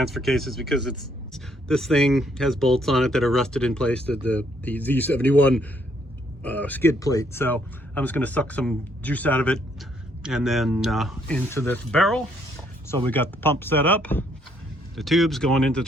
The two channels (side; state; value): both; normal; correlation 0.70